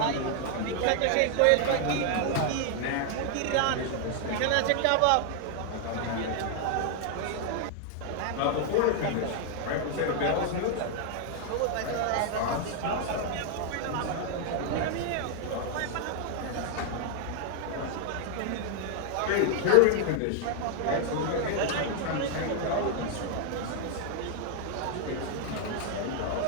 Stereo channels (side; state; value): both; different; correlation 0.00